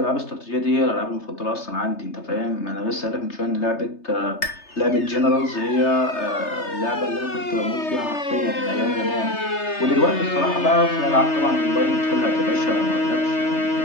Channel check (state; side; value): late; right; 3.3 ms